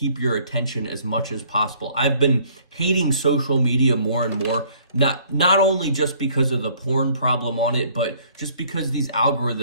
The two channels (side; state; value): both; inverted; correlation -0.59